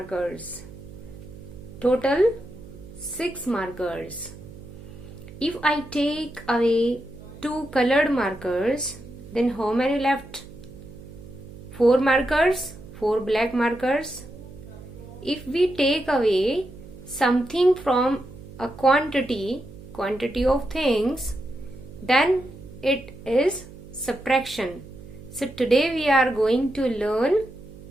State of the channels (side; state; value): right; noise; hum, 17 dB below the sound